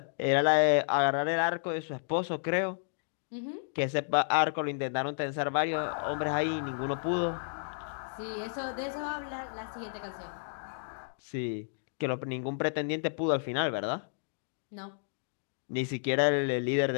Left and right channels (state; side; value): silent; right; digital silence